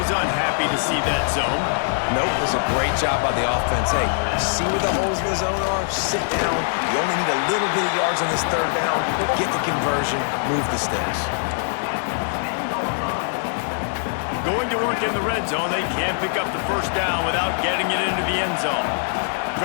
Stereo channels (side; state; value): right; silent; digital silence